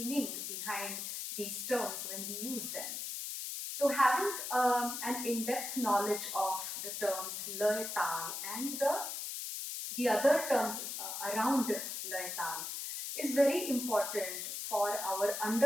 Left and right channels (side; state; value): left; noise; hiss, 5 dB below the sound